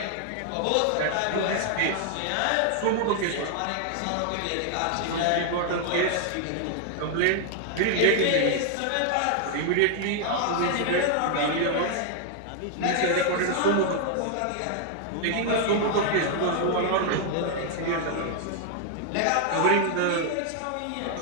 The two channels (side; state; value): both; different; correlation 0.00